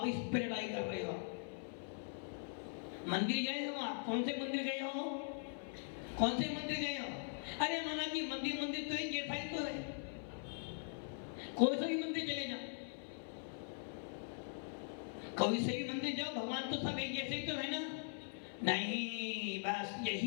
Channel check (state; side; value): silent; right; 50 dB below the other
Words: इस पर लड़ाई कर रहे हो। मंदिर गए हो आप? कौन से मंदिर गए हो? कौन से मंदिर गए हो? अरे माना कि मंदिर मंदिर तो एक जैसा ही तो है, कोई सा भी मंदिर चले जाओ, कोई से भी मंदिर जाओ, भगवान तो सब एक जैसे ही तो है ना। नहीं, बस